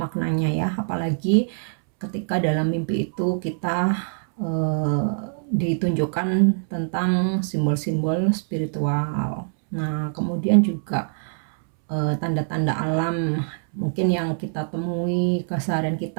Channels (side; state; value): left; silent; 63 dB below the other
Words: ya. Apalagi ketika dalam mimpi itu kita ditunjukkan tentang simbol-simbol spiritual. Nah, kemudian juga tanda-tanda alam mungkin yang kita temui keseharian